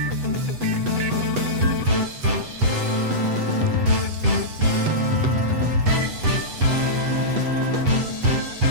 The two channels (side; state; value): left; late; 8.0 ms